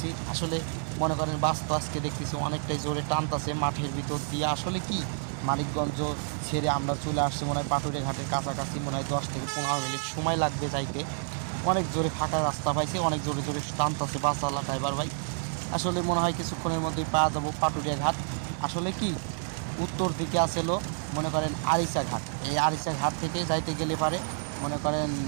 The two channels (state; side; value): silent; left; 58 dB below the other